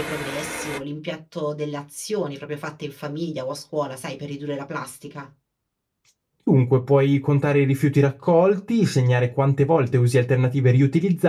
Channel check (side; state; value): both; identical; correlation 1.00